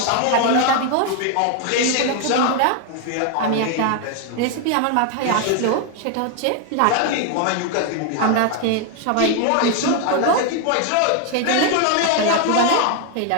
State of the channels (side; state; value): both; different; correlation 0.00